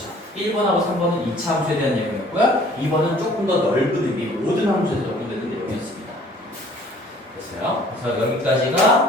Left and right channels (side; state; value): both; normal; correlation 0.54